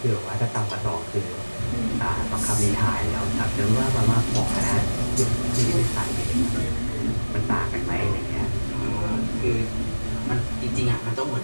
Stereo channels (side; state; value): both; inverted; correlation -1.00